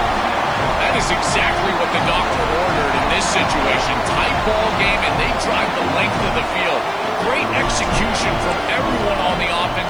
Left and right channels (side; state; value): right; noise; hiss, 30 dB below the sound